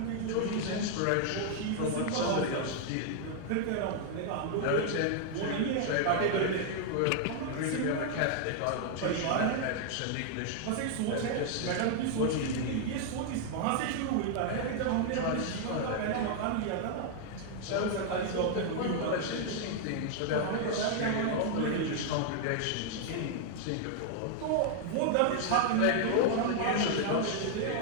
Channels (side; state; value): both; different; correlation 0.00